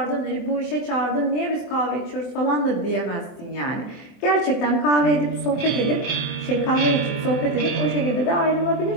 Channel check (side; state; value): right; late; 23 ms